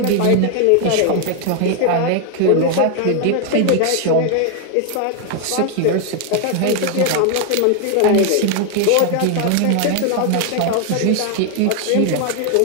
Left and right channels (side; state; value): both; different; correlation 0.00